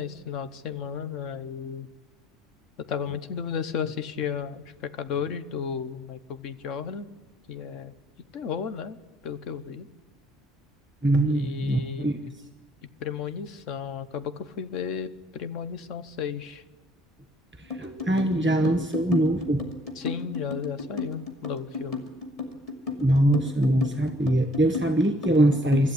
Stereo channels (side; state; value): both; normal; correlation 0.60